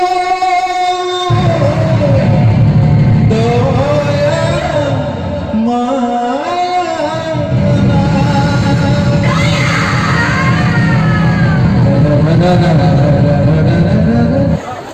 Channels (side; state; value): both; identical; correlation 1.00